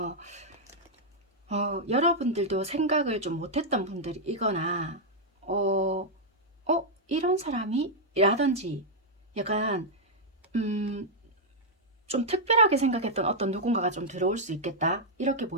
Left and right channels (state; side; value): normal; both; correlation -0.04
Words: 여러분들도 생각을 좀 못했던 분들이거나 이런 사람이? 라든지 약간 좀 특별하게 생각했던 어떤 누군가가 좀 들어올 수 있겠다, 이렇게